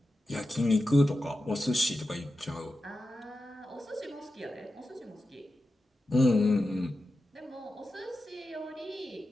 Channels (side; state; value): both; normal; correlation 0.91